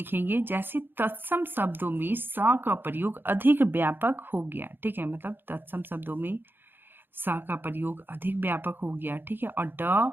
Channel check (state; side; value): late; left; 0.099 ms